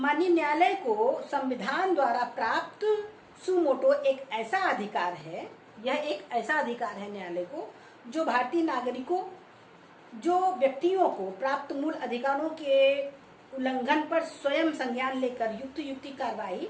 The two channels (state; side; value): identical; both; correlation 1.00